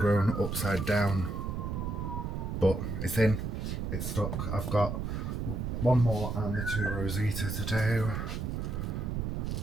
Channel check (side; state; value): right; noise; rumble, 2 dB below the sound